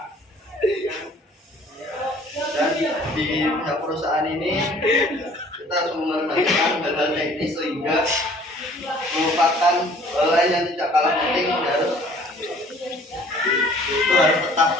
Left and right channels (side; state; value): both; normal; correlation 0.53